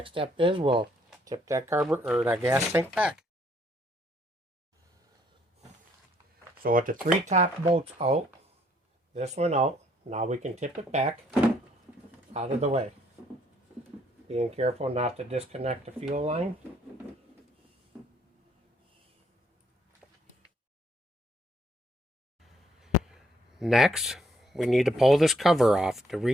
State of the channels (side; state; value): both; normal; correlation 0.68